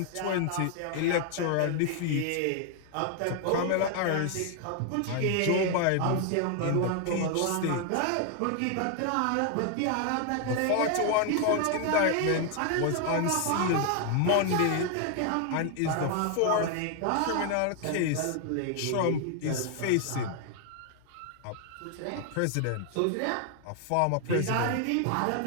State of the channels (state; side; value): different; both; correlation 0.00